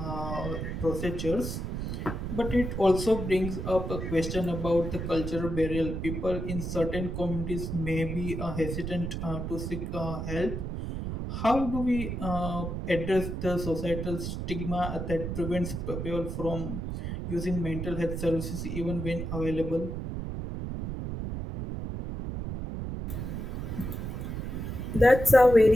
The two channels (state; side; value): noise; right; rumble, 4 dB below the sound